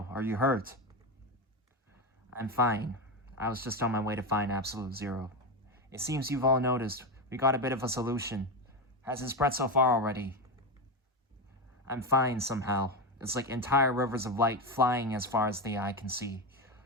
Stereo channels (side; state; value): both; normal; correlation 0.15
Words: Are you hurt? I'm fine. I was just on my way to find Absolute Zero. It seems you've all noticed. We got a bit of a solution. Has it spread so far already? I'm fine somehow. It's like entire rivers of light flying as far as the eye can see.